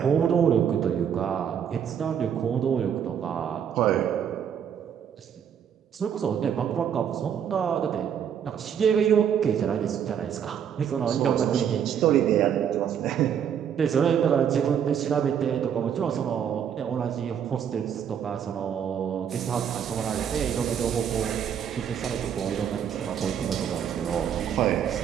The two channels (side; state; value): left; quieter; 8.4 dB